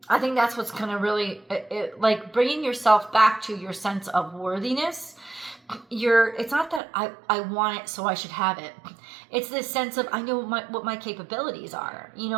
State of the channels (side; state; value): left; drops out; at 6.8 s